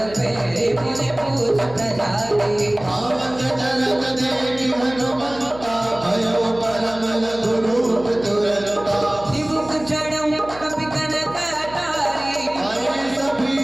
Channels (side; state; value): right; noise; hum, 17 dB below the sound